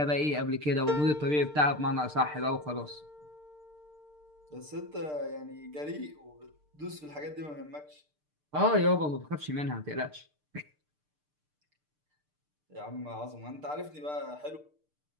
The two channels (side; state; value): left; late; 6.7 ms